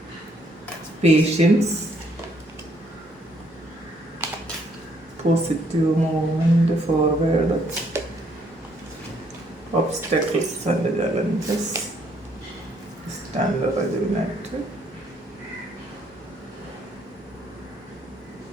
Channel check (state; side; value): normal; both; correlation 0.68